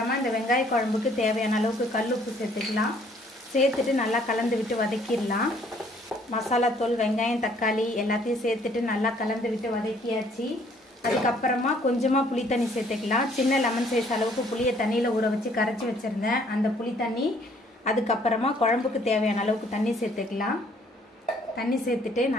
இந்த வெங்காய குழம்புக்கு தேவையான அளவுக்கு கல் உப்பு சேர்த்துக்கலாம். சேர்த்துட்டு நல்லா கலந்து விட்டு வதக்கிடலாம். மசாலா தூள் வெங்காயம் தக்காளி எல்லாத்தையும் சேர்த்துட்டு நல்லா கலந்து விட்டு வதக்கியாச்சு. அதுக்கப்புறமா கொஞ்சமாக புளி தண்ணி சேர்த்துக்கலாம். சின்ன லெமன் சைஸ் அளவுக்கு புளியை தண்ணியில் ஊற வச்சு கரைச்சி வச்சுருந்தேன், அந்த புளி தண்ணி. அதுக்கப்புறமா குழம்புக்கு தேவையான அளவுக்கு தண்ணி சேர்த்துக்கலாம். தண்ணி சேர்த்துட்டு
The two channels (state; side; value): normal; both; correlation 0.61